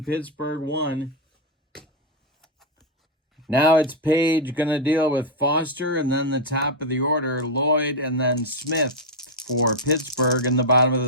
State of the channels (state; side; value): normal; both; correlation 0.01